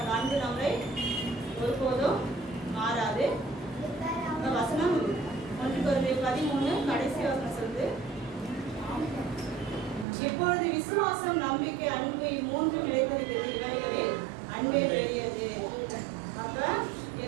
அன்பு நம்மளை ஒருபோதும் மாறாது. இந்த வசனம் 1 Corinthians 13 கடைசி வசனம் சொல்லுது, இப்பொழுது விசுவாசம், நம்பிக்கை, அன்பு இம்மூன்றும் நிலைத்திருக்கிறது, இவைகளில் அன்பே பெரியது. அப்ப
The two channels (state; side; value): drops out; left; at 10.1 s